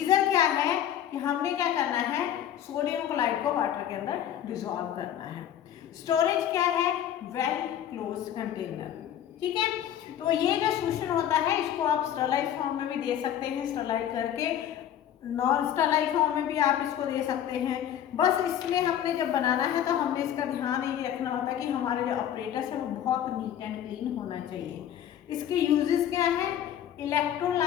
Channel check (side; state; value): right; quieter; 10.5 dB